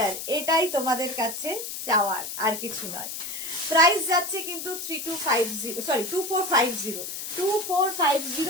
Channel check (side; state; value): left; noise; hiss, 7 dB below the sound